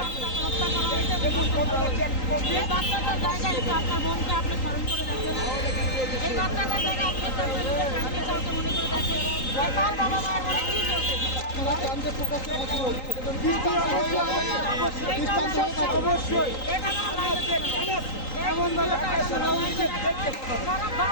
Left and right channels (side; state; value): right; late; 3.8 ms